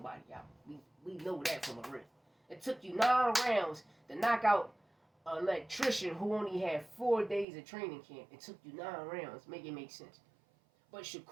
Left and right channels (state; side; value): drops out; left; at 7.5 s